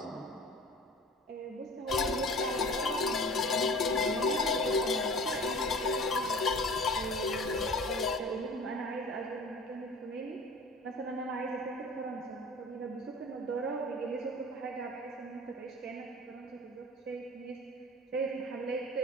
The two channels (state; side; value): normal; both; correlation 0.41